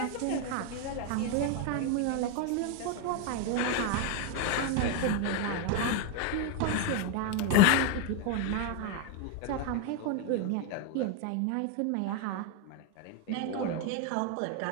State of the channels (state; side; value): different; both; correlation 0.01